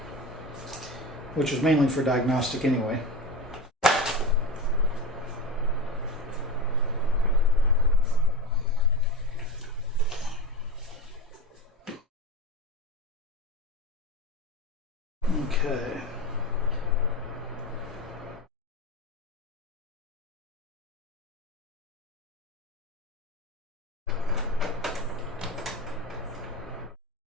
which is mainly for diagnostic anyway. Okay.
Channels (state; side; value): normal; both; correlation 0.25